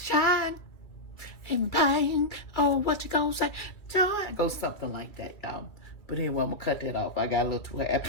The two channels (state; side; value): late; right; 2.2 ms